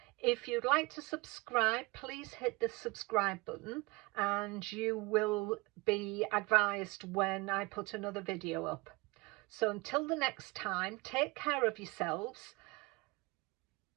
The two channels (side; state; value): left; quieter; 24.9 dB